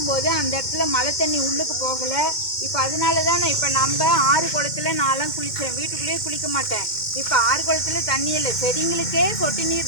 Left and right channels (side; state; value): right; late; 2.1 ms